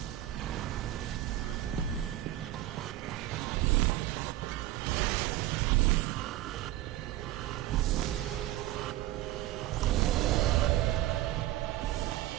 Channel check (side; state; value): left; quieter; 15.0 dB